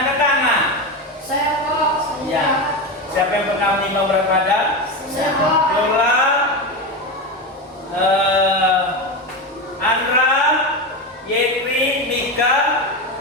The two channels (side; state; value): both; normal; correlation 0.18